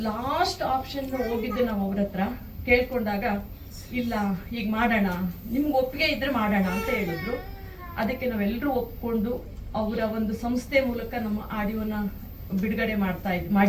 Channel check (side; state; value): both; identical; correlation 1.00